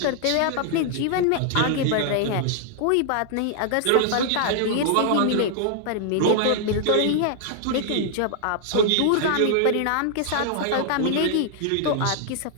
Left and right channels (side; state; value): both; different; correlation -0.01